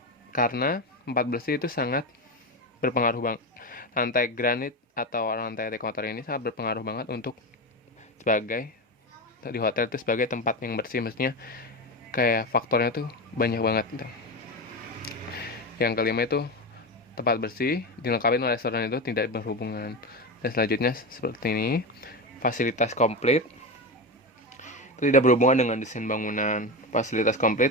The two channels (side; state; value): both; normal; correlation 0.19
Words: Karena tempat bersih itu sangat berpengaruh banget. Lantai granit atau lantai anti kotor ini sangat berpengaruh banget untuk di hotel itu sebagai tempat yang bersih, maksudnya kayak faktornya tuh banyak banget gitu. Yang kelima itu tempat bersih dilengkapi oleh restoran itu tidak berhubungan. Dan selanjutnya seperti ini, fasilitas komplit itu tidak berhubungan dengan desain bangunan. Fasilitas